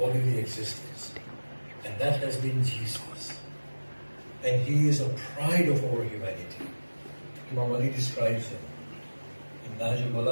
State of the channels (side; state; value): both; inverted; correlation -1.00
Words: existence. And that has been Jesus. And He is a pride of our humanity. Imam Ali describes Him in Nahj